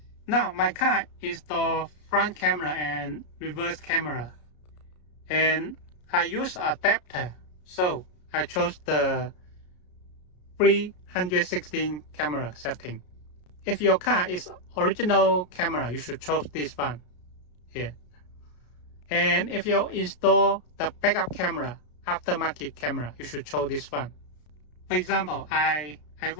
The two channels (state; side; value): late; right; 33 ms